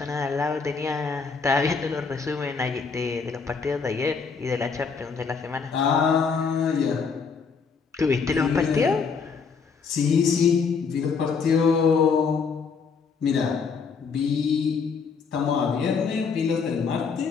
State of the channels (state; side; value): quieter; right; 5.4 dB